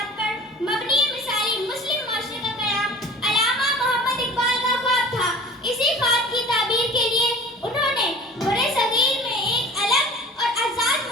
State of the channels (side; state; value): both; normal; correlation 0.42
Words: पर मबनी मिसाली मुस्लिम मुआशरे का क़याम अल्लामा मोहम्मद इक़बाल का ख्वाब था। इसी ख्वाब की ताबीर के लिए उन्होंने बड़े सगीर में एक अलग और आज़ाद